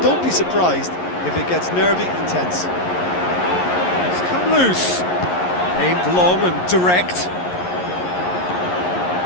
don't be surprised if it gets nervy and tense. It's come loose, aimed long and direct.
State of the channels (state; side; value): late; right; 11 ms